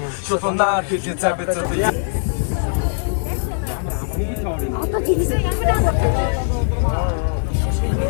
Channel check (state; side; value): silent; right; 66 dB below the other